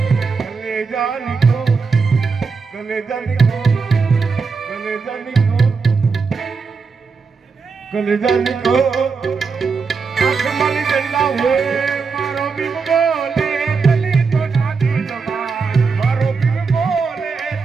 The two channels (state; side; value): quieter; left; 4.9 dB